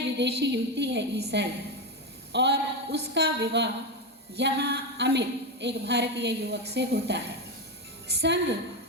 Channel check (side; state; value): both; normal; correlation 0.12